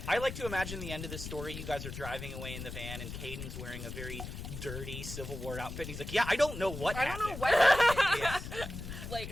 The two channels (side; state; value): left; noise; rumble, 8 dB below the sound